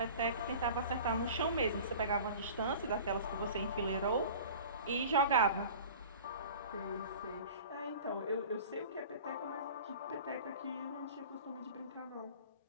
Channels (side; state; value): both; inverted; correlation -0.40